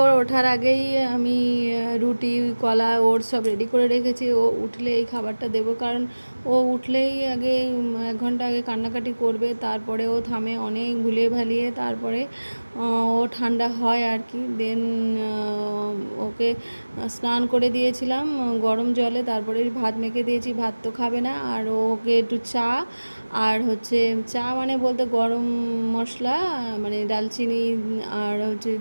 ওর ওঠার আগেই আমি রুটি, কলা, ওটস সব রেডি করে রেখেছি। ও উঠলে এই খাবারটা দেবো, কারণ ও উঠলেই আগে 1 ঘন্টা আগে কান্নাকাটি করবে, তারপরে ও থামে অনেক ভুলিয়ে ভালিয়ে, তারপরে ও ঠান্ডা হয় আর কি। দেন ওকে স্নান করে দিয়েছিলাম গরম জলে, তারপরে ভাত মেখে দিয়েছি, ভাত তো খাবে না। আর ওকে একটু চা, আর হচ্ছে চা মানে বলতে গরম মশলা, মানে দালচিনি আর হচ্ছে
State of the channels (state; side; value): inverted; both; correlation -1.00